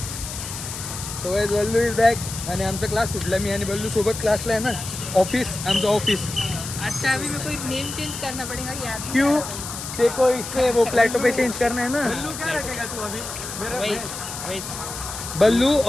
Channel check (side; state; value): left; noise; hiss, 8 dB below the sound